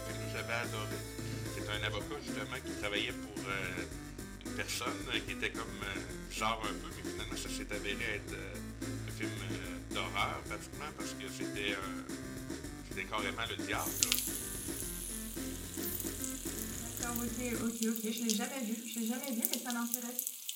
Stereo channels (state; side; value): identical; both; correlation 1.00